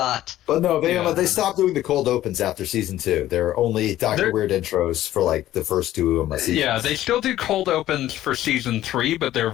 But no, Yeah. they stopped doing the cold opens after season 2. There are only Dr. They're- Weird intros for like the first 2 seasons. Yeah, they still do cold opens for season 3, but they're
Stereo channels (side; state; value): right; quieter; 13.8 dB